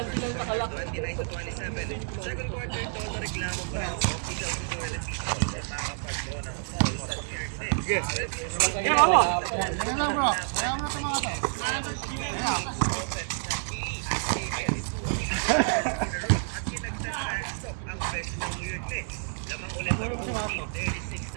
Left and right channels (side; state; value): left; silent; 56 dB below the other